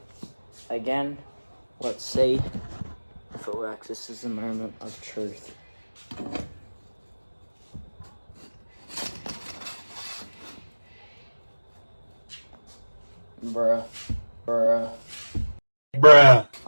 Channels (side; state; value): both; inverted; correlation -1.00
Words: Again, let's see if it works. This is the moment of truth. Bruh.